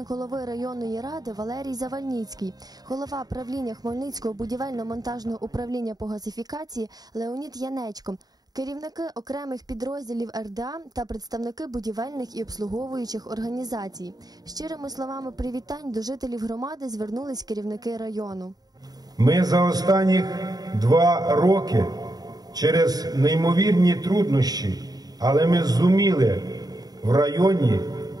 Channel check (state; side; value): late; left; 0.19 ms